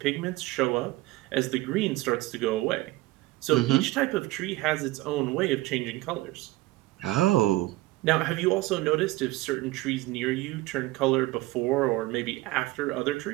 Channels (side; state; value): left; quieter; 19.2 dB